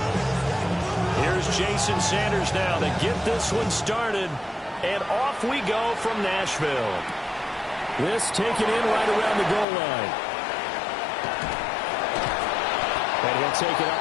Here's Jason Sanders now to get this one started. And off we go from Nashville. This taken in right around the goal line. And he'll take it up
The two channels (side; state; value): right; drops out; at 9.7 s